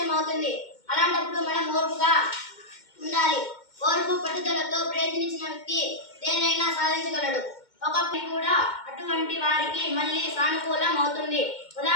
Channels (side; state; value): right; late; 2.1 ms